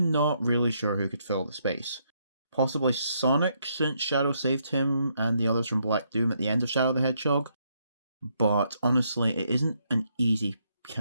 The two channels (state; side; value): inverted; both; correlation -0.75